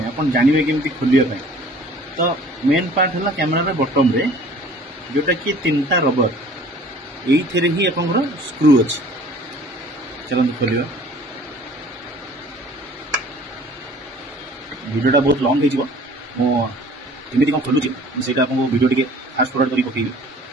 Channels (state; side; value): normal; both; correlation 0.50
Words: आप जानवे केमती खोलिया। तो मेन पार्ट है कैमेरा बटम रे जोटा कि 3टा रबर ये ही आप स्क्रू अच्छी। चलते खोलिया। वीडियोटा बहुत लंग होमती कौन खोलुची से वीडियो टी फास्ट फॉरवर्ड कर पकईबी